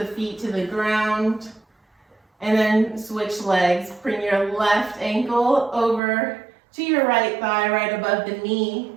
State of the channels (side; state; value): left; drops out; at 6.0 s